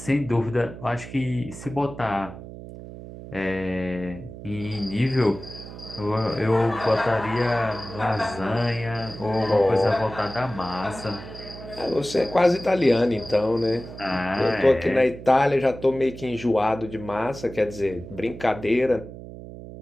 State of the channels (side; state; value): right; noise; hum, 13 dB below the sound